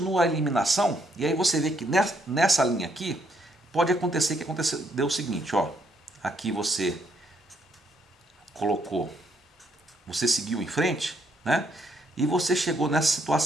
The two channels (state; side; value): normal; both; correlation 0.72